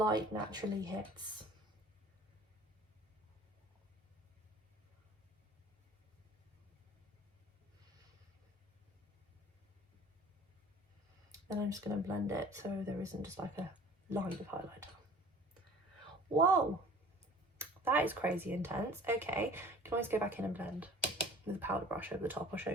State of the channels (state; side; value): normal; both; correlation 0.47